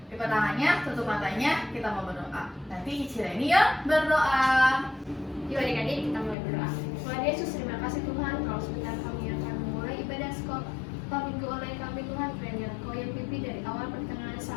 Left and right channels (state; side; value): drops out; right; at 6.4 s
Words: Lipat tangannya, tutup matanya, kita mau berdoa. Nanti Cici Reni yang berdoa. Yuk adik-adik, kita mulai berdoa. Tuhan Yesus, terima kasih Tuhan, kalau sebentar kami akan memulai ibadah sekolah minggu online kami Tuhan, kiranya Engkau yang pimpin dari awal pertengahan